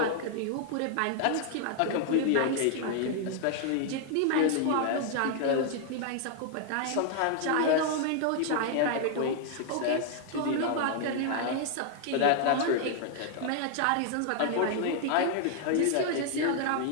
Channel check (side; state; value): both; different; correlation 0.00